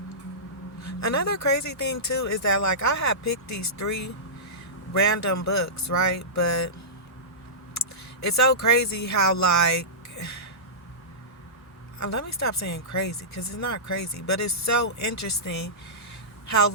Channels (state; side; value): normal; both; correlation -0.19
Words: Another crazy thing too is that like I had picked these 3 random books, right? But it's so crazy how like let me stop saying crazy because it's not crazy, but it's so interesting how